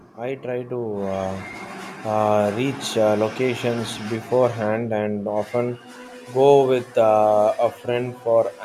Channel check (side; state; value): both; identical; correlation 1.00